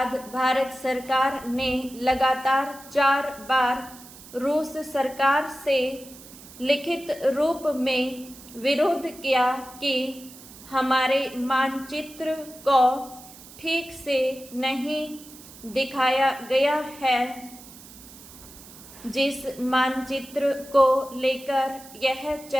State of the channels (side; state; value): right; noise; hiss, 19 dB below the sound